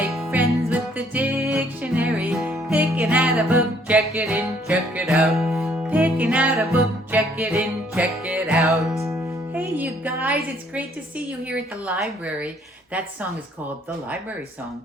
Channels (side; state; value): both; normal; correlation 0.64